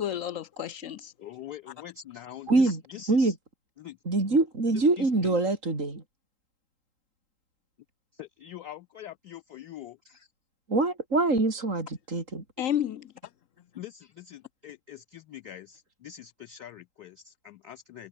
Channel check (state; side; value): late; left; 3.8 ms